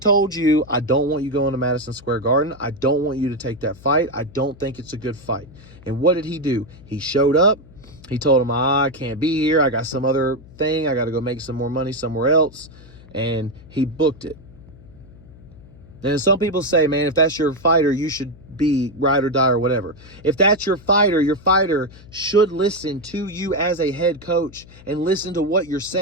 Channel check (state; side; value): noise; left; hum, 21 dB below the sound